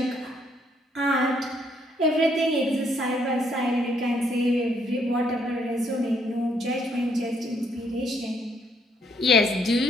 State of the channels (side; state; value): both; normal; correlation 0.70